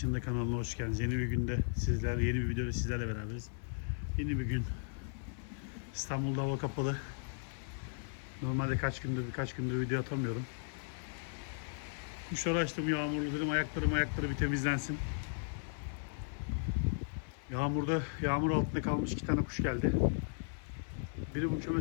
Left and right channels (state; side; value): silent; right; 54 dB below the other